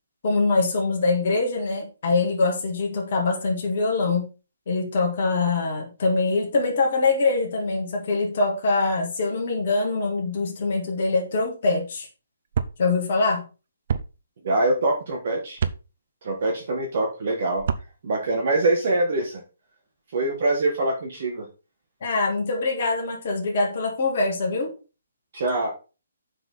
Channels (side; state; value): both; inverted; correlation -0.69